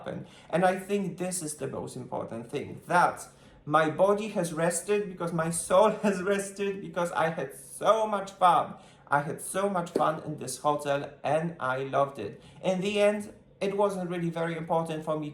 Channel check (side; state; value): both; identical; correlation 1.00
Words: And I think this is the most important thing, that my body has rested because my soul has rested, because I had so much fun. I had so much fun in this hotel and I loved it. In the end, it wasn't really very important for me.